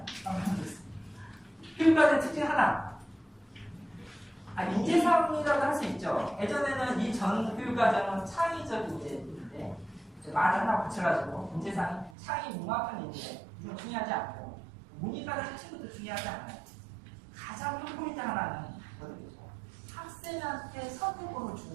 교육과정의 특징 하나. 인재사항이라고 할 수 있죠. 예전에는 이 전 교육과정은 창의적 인재인데 말을 하나 붙여가지고 인재사항 창의 융합한 인재 이건 중요하지 않고 문이과정 자체부터 중요하지 않아요. 가장 큰 포인트 하나는 뭐죠? 학생한테 선택권을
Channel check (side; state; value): left; drops out; at 12.2 s